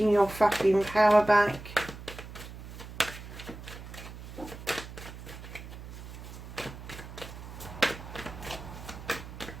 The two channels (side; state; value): right; noise; hum, 12 dB below the sound